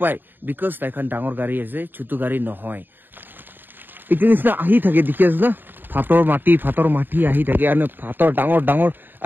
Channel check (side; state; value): left; late; 0.093 ms